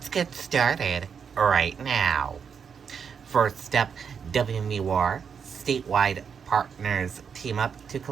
get started right now. First up, WMUR statewide partners team up to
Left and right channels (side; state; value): left; quieter; 6.7 dB